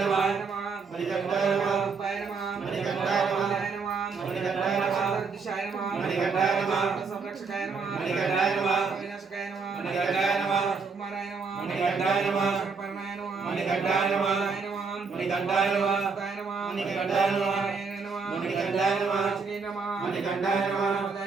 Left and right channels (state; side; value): quieter; left; 4.9 dB